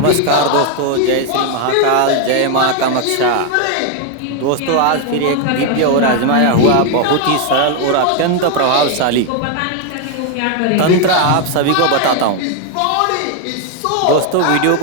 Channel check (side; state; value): both; different; correlation 0.01